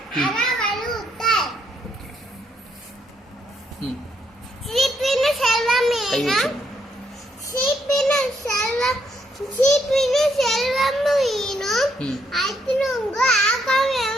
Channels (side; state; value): both; normal; correlation 0.74